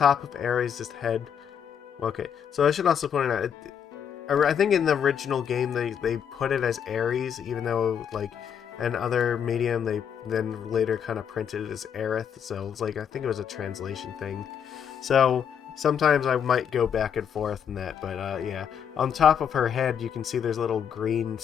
of Ares' head. Okay, so I should also point out, I think in the original game they put it as Ares, even though like in other medium they then later kind of printed it as Aerith. So it's like I think it was a translation thing. So sometimes I might go back and forth in that, but yeah, on top of her head you can see there's a little green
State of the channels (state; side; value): quieter; right; 8.1 dB